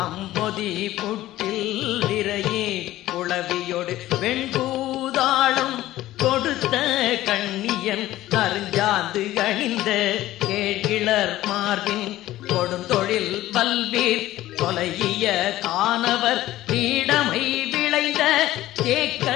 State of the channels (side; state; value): right; quieter; 15.2 dB